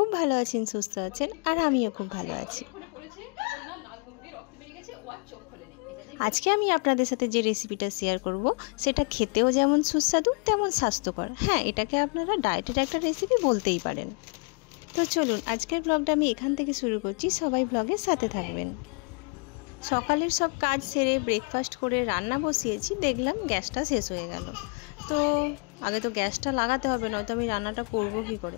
ভালো আছেন, সুস্থ আছেন, আর আমিও খুব ভালো আছি। আজকে আমি আপনাদের সাথে যে রেসিপিটা শেয়ার করব সেটা খেতেও যেমন সুস্বাদু তেমন স্বাস্থ্যকর। হ্যাঁ, এটাকে আপনারা ডায়েটের একটা রেসিপি বলতেই পারেন। তো চলুন আজকের ব্লগটা আমি এখান থেকে শুরু করছি, সবাই ব্লগের সাথে থাকবেন। সকালের সব কাজ সেরে ব্রেকফাস্ট করে রান্না বসিয়েছি, দেখলাম গ্যাসটা শেষ হয়ে গেল। তো আগে তো গ্যাসটা লাগাতে হবে, নয়তো আমি রান্নাটা করব কী করে।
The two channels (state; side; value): quieter; right; 35.2 dB